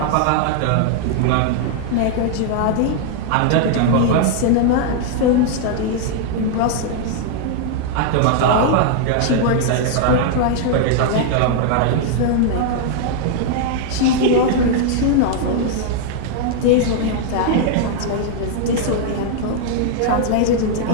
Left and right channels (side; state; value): both; different; correlation 0.00